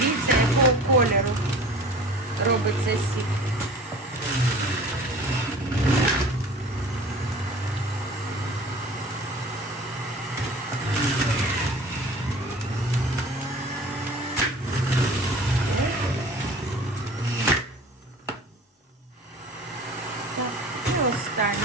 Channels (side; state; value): both; normal; correlation 0.42